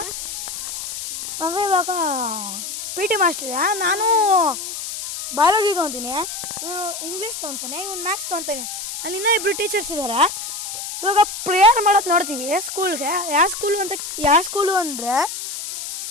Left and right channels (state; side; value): noise; left; hiss, 7 dB below the sound